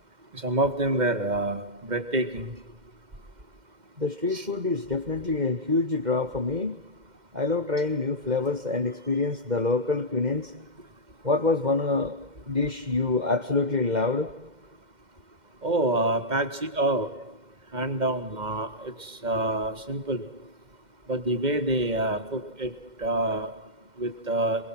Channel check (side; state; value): left; late; 2.1 ms